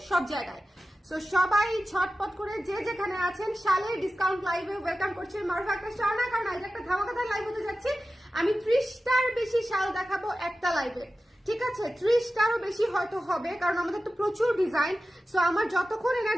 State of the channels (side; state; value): both; normal; correlation 0.94